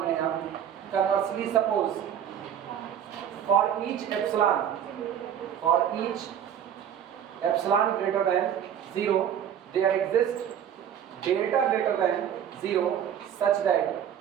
रहे हैं हम. Conversely suppose for each epsilon greater than 0 there exists delta greater than 0 such that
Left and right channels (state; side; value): quieter; left; 9.3 dB